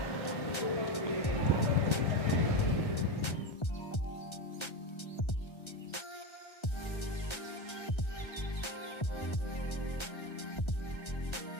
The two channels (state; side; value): late; right; 1.3 ms